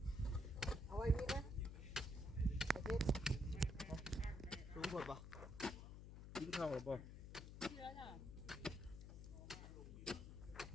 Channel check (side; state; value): left; noise; hum, 10 dB below the sound